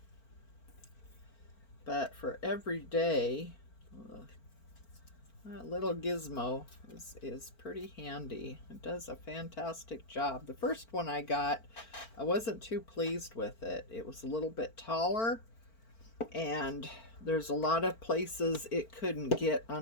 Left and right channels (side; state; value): right; late; 4.4 ms